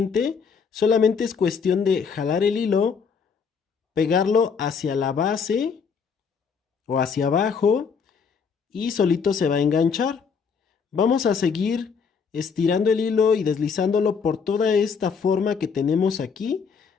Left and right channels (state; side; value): quieter; right; 5.9 dB